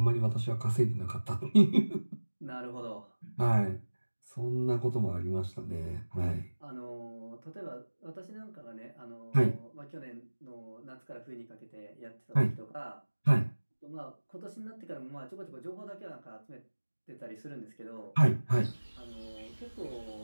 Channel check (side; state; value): both; inverted; correlation -1.00